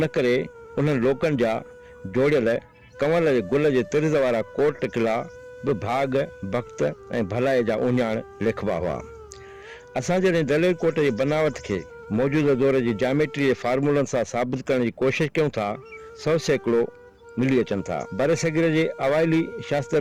करे उन्हनि लोकनि जा जोड़ियल कंवर जे गुल जे तिर्ज़ वारा कोट किला बि भाग भक्त ऐं भलाई जा उञाण लिखबा हुआ। असां जॾहिं दलेल कोट जी बनावट खे मौजूदा दौर जी जामेट्री जे फार्मूलनि सां साबित करण जी कोशिशि कयूं था, 100 सैकड़ो मिली अचनि था। बर सग़ीर जे अवाइली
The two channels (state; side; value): identical; both; correlation 1.00